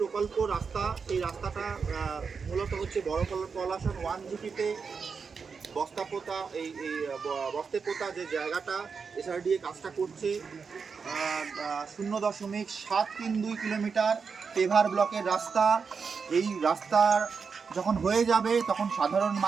প্রকল্প রাস্তা, সেই রাস্তাটা মূলত হচ্ছে বড় পলাশন 1 জিপিতে বস্তাপোতা বস্তেপোতা যে জায়গাটা এসআরডিএ কাজটা করছে 0.732 কিলোমিটার পেভার ব্লকের রাস্তা। এই রাস্তার যখন হয়ে যাবে তখন সাধারণ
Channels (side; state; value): left; quieter; 5.5 dB